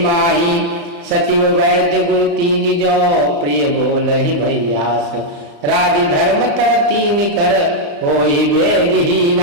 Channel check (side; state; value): left; late; 35 ms